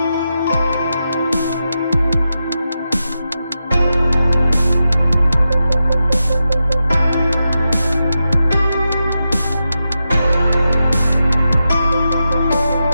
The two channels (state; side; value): inverted; both; correlation -0.89